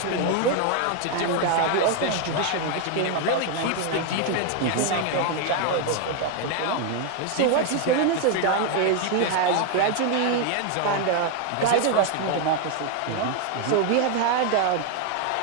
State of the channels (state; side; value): different; both; correlation 0.01